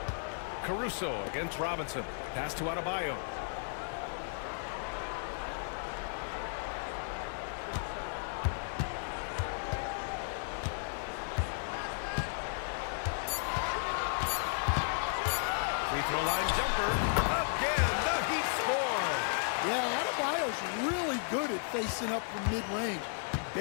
Caruso against Robinson. Pass to Adebayo. Free throw line jumper. Again, the Heat score. Yeah, Adebayo's really good at facing up from mid-range.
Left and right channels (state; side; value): silent; right; 55 dB below the other